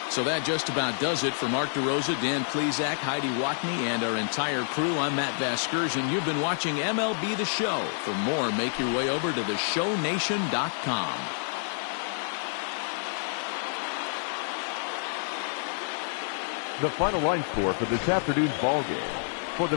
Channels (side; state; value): right; silent; digital silence